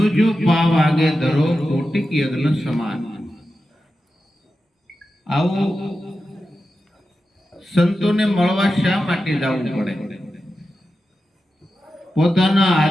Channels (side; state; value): both; normal; correlation 0.91